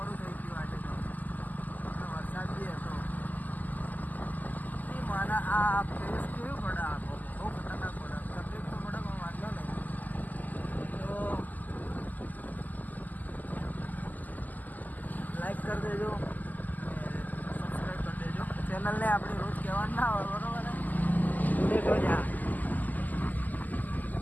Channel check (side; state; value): right; late; 0.082 ms